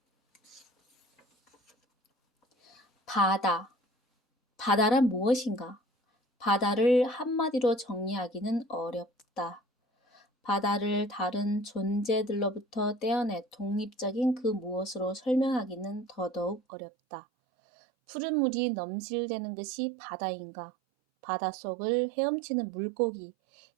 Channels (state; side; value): drops out; left; at 16.6 s